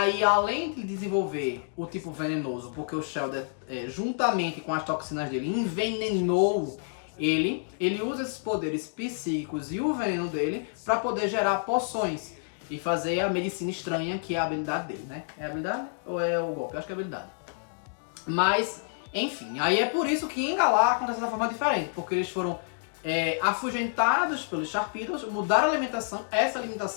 além de desenvolver o tipo venenoso, porque o Shellder, juntamente com as toxinas dele, envenenou ele usa esses poderes psíquicos e o veneno dele para poder gerar poções e fazer a medicina estranha, que é a habilidade dele, né? É a habilidade ou é o golpe? Eu acho que é a habilidade. Mas, enfim, aí é por isso que em Galar acontece de forma diferente, porque eles foram afugentados pelos Sharpedos, mudaram a alimentação, essa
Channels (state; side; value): silent; right; digital silence